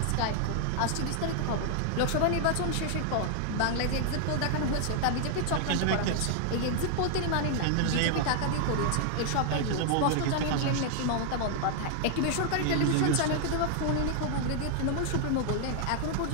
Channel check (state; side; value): different; both; correlation 0.00